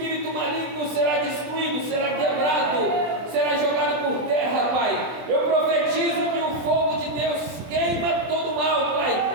maligno será destruído, será quebrado, será jogado por terra, Pai. Eu profetizo que o fogo de Deus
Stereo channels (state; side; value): late; left; 24 ms